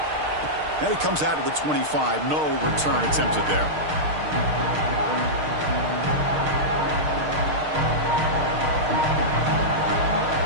And it comes out to the 25. No return attempted there.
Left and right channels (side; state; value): left; late; 6.5 ms